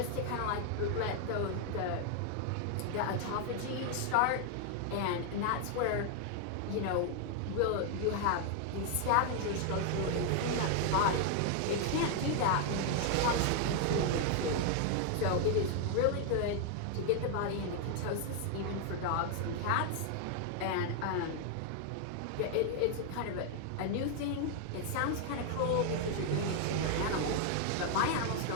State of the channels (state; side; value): different; both; correlation 0.00